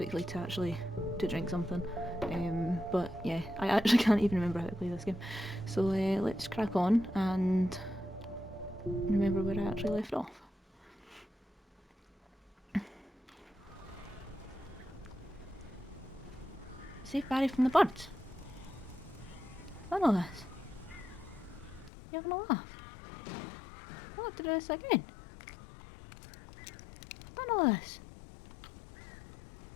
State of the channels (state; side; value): drops out; right; at 21.9 s